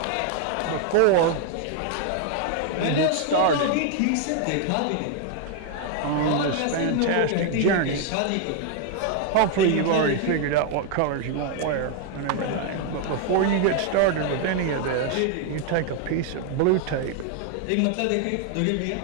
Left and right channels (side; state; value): both; different; correlation 0.00